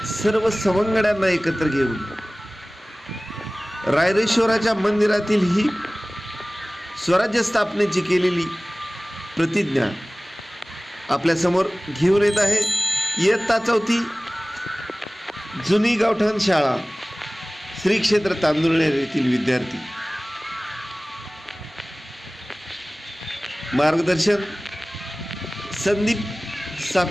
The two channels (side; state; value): both; normal; correlation 0.98